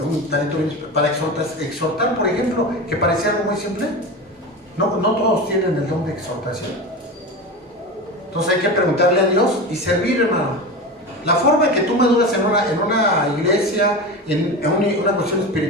un talento bien especial para exhortar, por ejemplo, que parecía algo muy simple. No todos tienen el don de exhortación. Entonces hay que preguntarle a Dios y servir, hermano. La forma en que tú maduras en una iglesia, en una cuestión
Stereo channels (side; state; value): both; normal; correlation 0.26